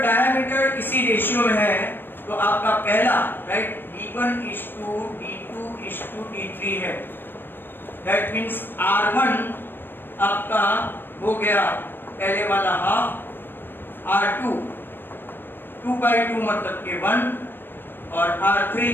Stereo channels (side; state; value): right; late; 0.097 ms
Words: diameter इसी ratio में है तो आपका पहला, right, d1 is to d2 is to d3 है। दैट मीन्स r1 आपका हो गया पहले वाला हाफ, r2 2/2 मतलब के 1, और r3